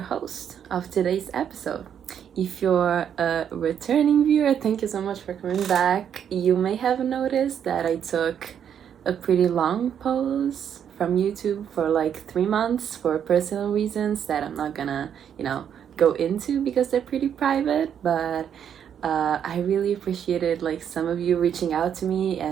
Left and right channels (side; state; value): left; quieter; 8.7 dB